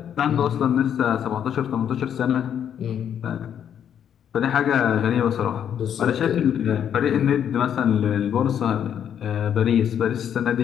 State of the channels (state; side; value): quieter; right; 9.0 dB